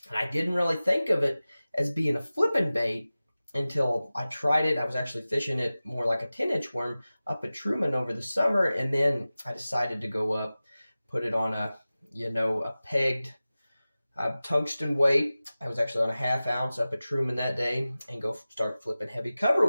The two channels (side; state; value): both; inverted; correlation -0.97